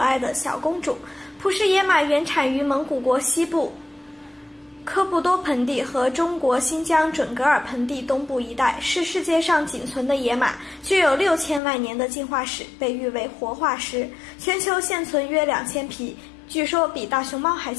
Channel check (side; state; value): right; drops out; at 11.6 s